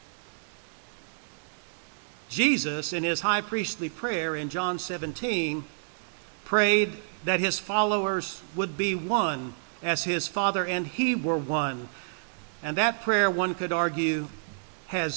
Jesus, in his high priestly prayer in John 17, prayed that his followers would be one as his Father and he were one. And that prayer, one could argue,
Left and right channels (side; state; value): left; silent; digital silence